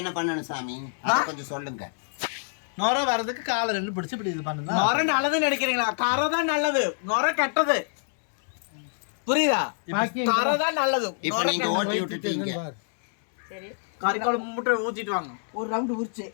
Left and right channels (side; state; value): right; silent; digital silence